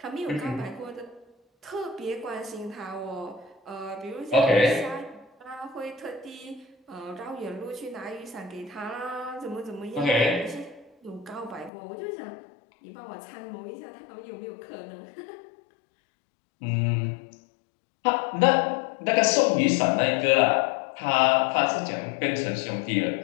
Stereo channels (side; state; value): right; drops out; at 11.7 s